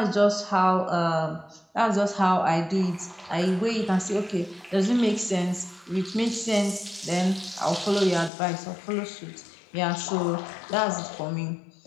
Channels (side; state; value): right; drops out; at 8.3 s